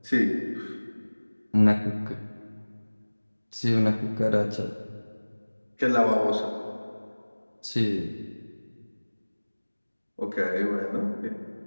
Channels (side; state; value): both; inverted; correlation -1.00